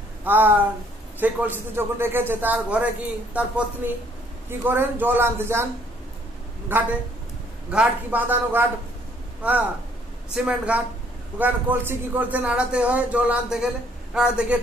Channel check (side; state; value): both; normal; correlation 0.64